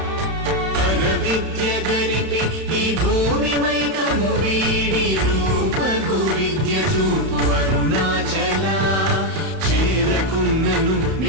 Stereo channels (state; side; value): late; left; 31 ms